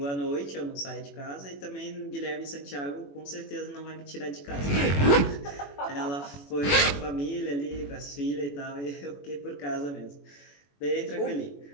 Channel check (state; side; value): late; right; 21 ms